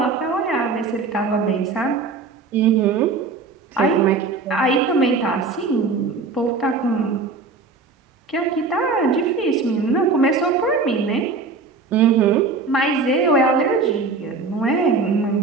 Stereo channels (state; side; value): quieter; left; 4.2 dB